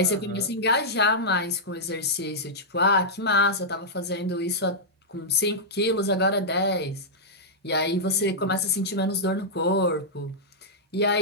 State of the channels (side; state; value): both; normal; correlation -0.09